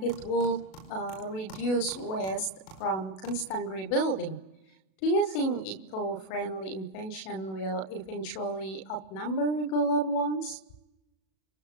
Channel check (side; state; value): right; late; 37 ms